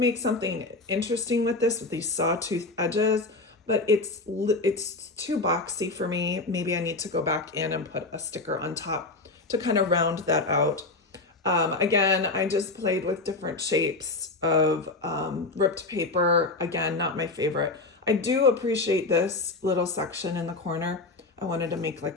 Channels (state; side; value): quieter; right; 3.4 dB